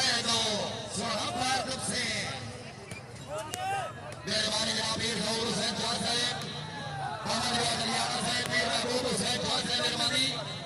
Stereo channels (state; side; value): identical; both; correlation 1.00